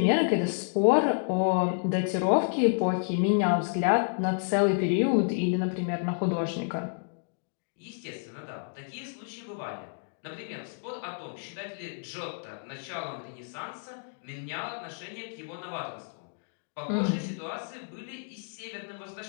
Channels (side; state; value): right; silent; digital silence